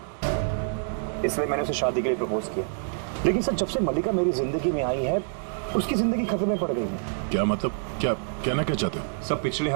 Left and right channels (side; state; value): left; silent; digital silence